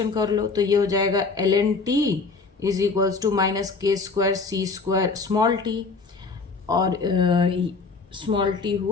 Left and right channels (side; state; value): right; quieter; 4.3 dB